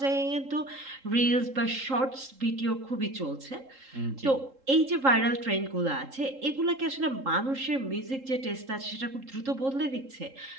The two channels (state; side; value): late; left; 3.7 ms